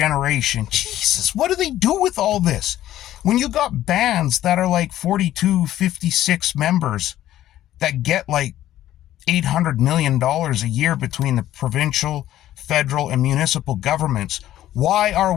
Jesus, what do they do with all this? When you got bands that are like 42, 56 members that get like $800 million a year between the provincial, federal, and municipal governments, why are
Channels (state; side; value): quieter; right; 13.2 dB